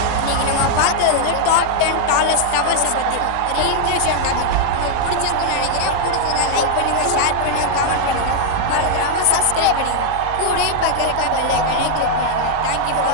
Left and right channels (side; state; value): both; different; correlation 0.00